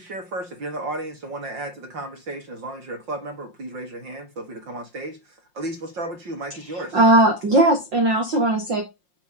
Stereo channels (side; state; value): left; late; 5.6 ms